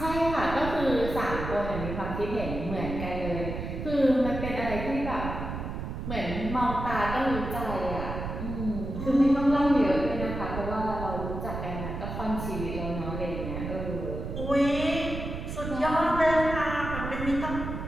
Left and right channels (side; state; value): right; noise; rumble, 6 dB below the sound